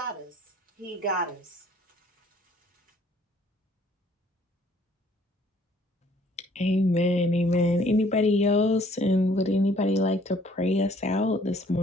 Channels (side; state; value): both; normal; correlation 0.60